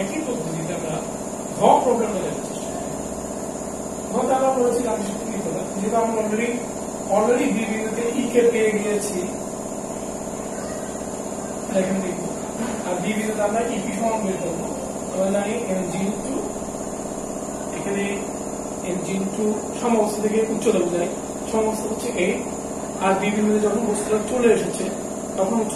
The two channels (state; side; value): identical; both; correlation 1.00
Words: একই পদ্ধতিতে আমরা ঘ প্রবলেমটা দেখার চেষ্টা করি। ঘতে আমরা বলেছি গাণিতিক কি করলাম, যেহেতু আমরা অলরেডি বি বিন্দুতে ই কে পেয়ে গিয়েছি, এখানে দেখব আর বি বিন্দুতে আমরা ইপি সমান বের করবো। আমরা জানি mg ইনটু এখানে mg ইনটু সমবস্তু থেকে উচ্চতা বোঝায়, সমবস্তু হচ্ছে a, আর বি বিন্দুতে যখন বস্তুটা চলে এসেছে তখন